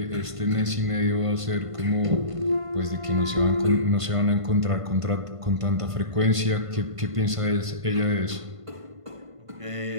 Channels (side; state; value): left; late; 1.5 ms